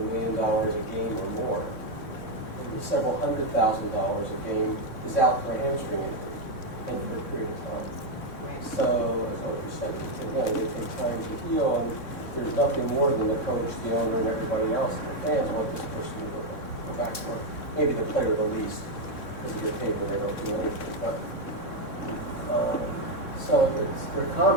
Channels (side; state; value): right; late; 3.6 ms